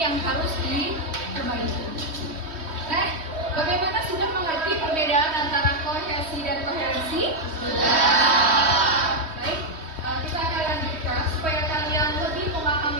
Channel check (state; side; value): late; left; 3.2 ms